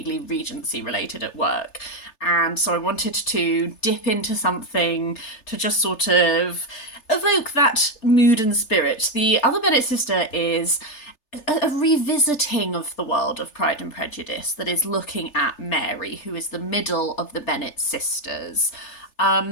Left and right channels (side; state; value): right; late; 3.3 ms